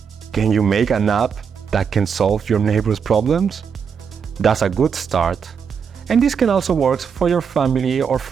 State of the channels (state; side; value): quieter; left; 6.7 dB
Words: Can you make an app that can solve your neighbor's problems? That's a good start. And this can also work for your family or